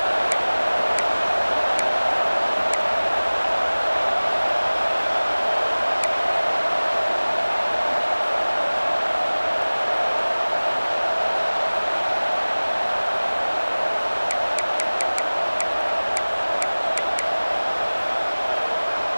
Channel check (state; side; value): inverted; both; correlation -1.00